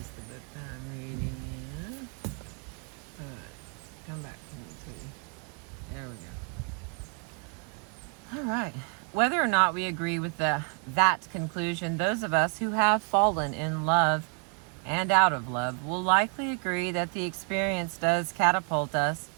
the book that I'm reading in. Alright, come back to me, too. There we go. Alright. Whether or not we agree with that conclusion, those of us who have fallen in love and out of love will likely agree that the experience does catapult us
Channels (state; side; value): quieter; left; 38.5 dB